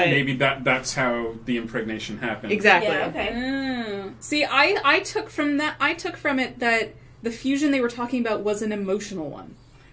maybe that's how the impregnation happened. Exactly. Yeah, okay. See, I took from it that the fusion they were talking about was an emotional one.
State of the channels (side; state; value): both; identical; correlation 1.00